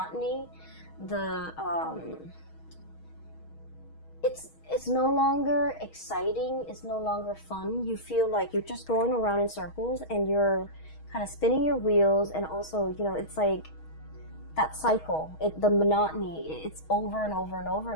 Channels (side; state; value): right; late; 6.3 ms